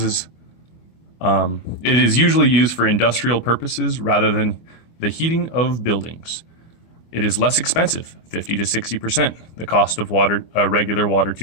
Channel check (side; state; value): right; late; 24 ms